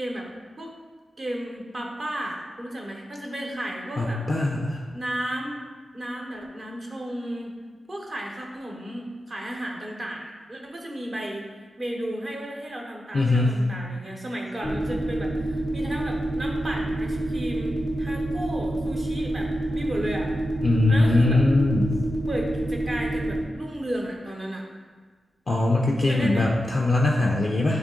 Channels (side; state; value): both; normal; correlation 0.90